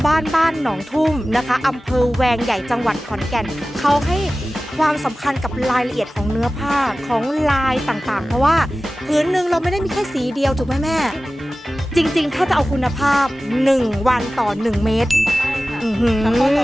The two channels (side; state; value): both; normal; correlation 0.96